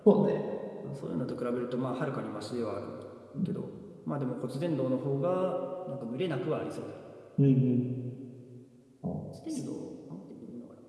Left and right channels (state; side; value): identical; both; correlation 1.00